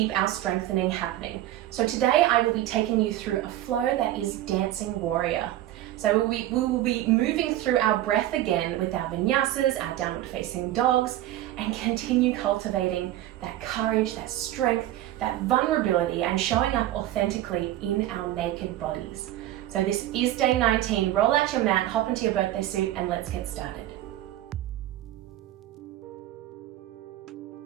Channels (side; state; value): left; quieter; 14.0 dB